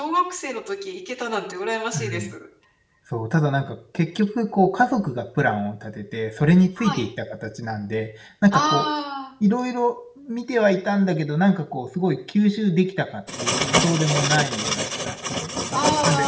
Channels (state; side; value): identical; both; correlation 1.00